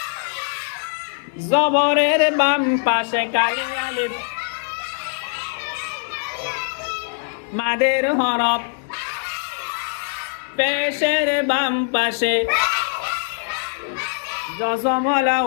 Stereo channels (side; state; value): right; silent; digital silence